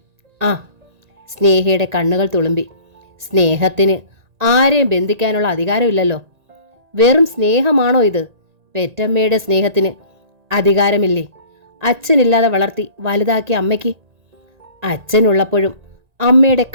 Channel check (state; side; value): late; left; 1.9 ms